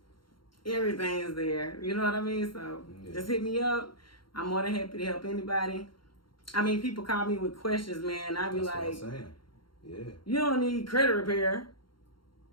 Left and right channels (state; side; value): late; right; 0.73 ms